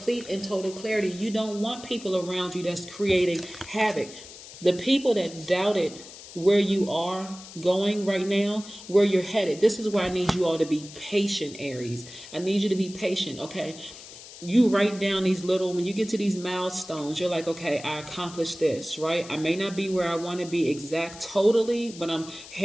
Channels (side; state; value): left; noise; hiss, 16 dB below the sound